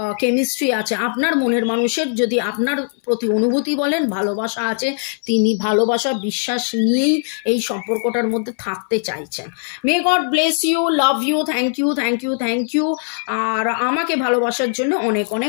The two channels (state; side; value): silent; right; 63 dB below the other